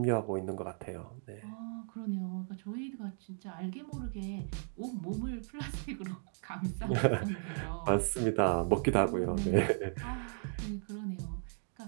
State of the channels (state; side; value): silent; left; 54 dB below the other